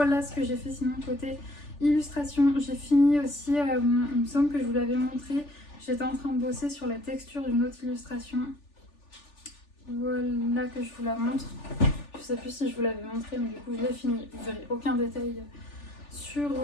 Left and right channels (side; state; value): right; late; 3.4 ms